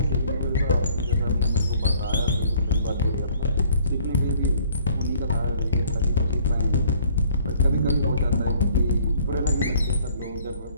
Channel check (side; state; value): both; inverted; correlation -0.57